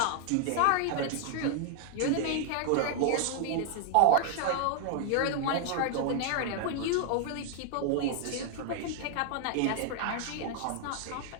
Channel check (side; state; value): both; different; correlation 0.00